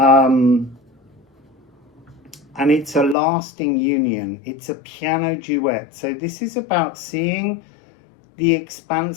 And it's a lasting union. It's a piano duet. So this is about seeing the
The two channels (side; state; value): right; drops out; at 3.2 s